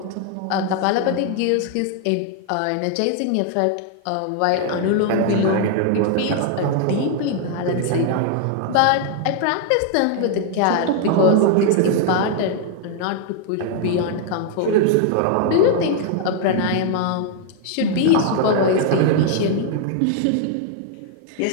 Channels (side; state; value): both; different; correlation 0.00